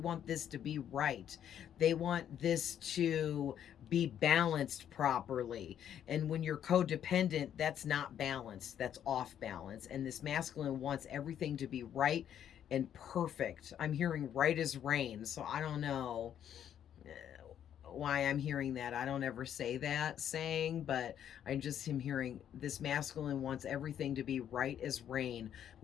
this to be right. They want this to be balanced properly. And when you're codependent, that's not balanced. That's off balance. And this masculine wants everything to be right and perfect. I'm hearing right as rain. So I don't know why I'm hearing that. I don't ever say that saying, but I just am hearing this masculine wants everything to be right as rain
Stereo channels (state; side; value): quieter; right; 9.8 dB